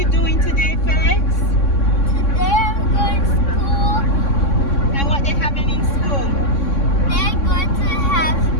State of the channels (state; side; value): late; right; 3.6 ms